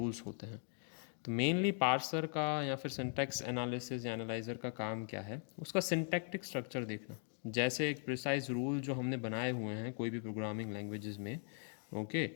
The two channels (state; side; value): silent; right; 51 dB below the other